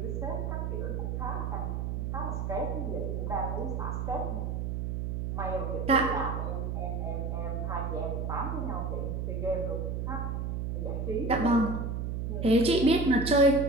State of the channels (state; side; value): noise; right; hum, 2 dB below the sound